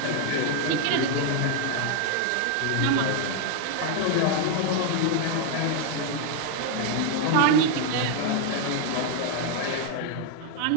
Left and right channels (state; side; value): different; both; correlation 0.00